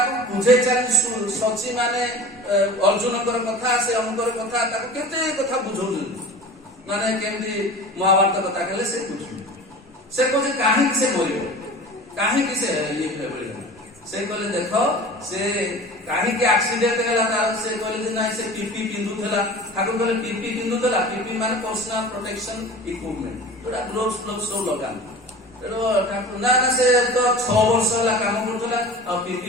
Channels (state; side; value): normal; both; correlation 0.37